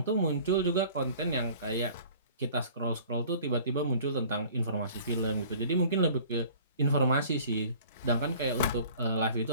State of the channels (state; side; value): inverted; both; correlation -0.48